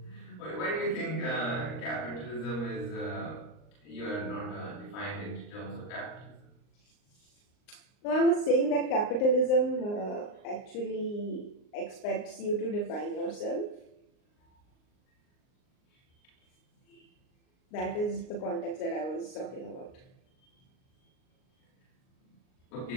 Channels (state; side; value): late; right; 39 ms